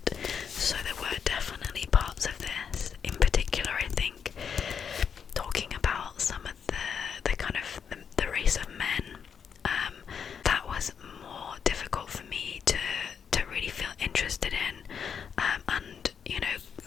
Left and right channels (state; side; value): quieter; right; 7.1 dB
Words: So there were definitely parts of this, in particular I think, talking about some of the kind of the race of men, that was more difficult for me to really feel interested in, and, you know,